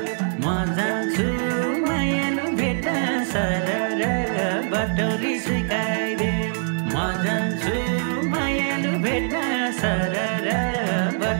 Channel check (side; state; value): left; silent; digital silence